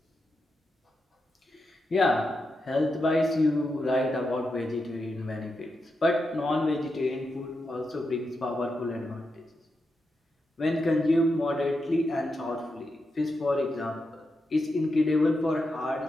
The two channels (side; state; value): both; normal; correlation 0.87